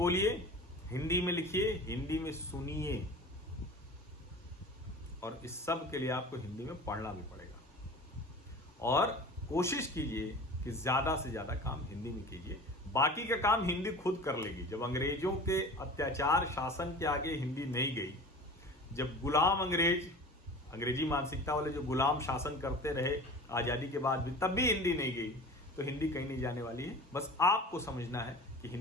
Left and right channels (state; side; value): normal; both; correlation 0.38